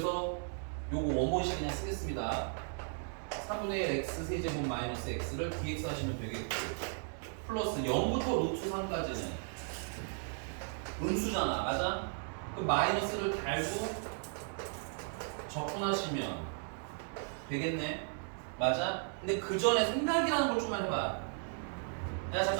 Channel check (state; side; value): silent; left; 54 dB below the other